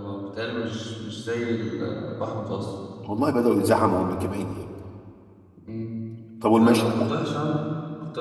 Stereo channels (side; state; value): both; identical; correlation 1.00